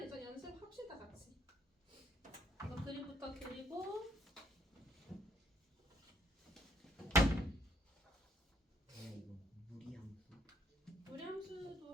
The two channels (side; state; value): both; normal; correlation 0.67